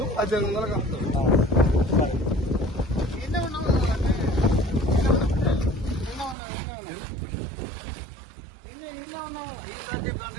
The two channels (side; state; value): left; drops out; at 6.4 s